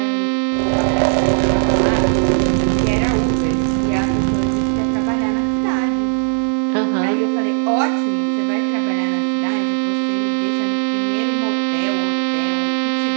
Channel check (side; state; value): left; silent; 67 dB below the other